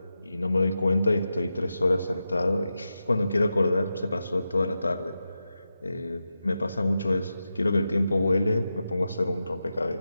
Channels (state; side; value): inverted; both; correlation -0.90